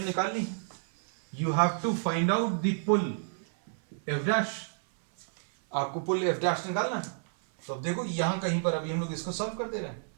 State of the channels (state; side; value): silent; left; 57 dB below the other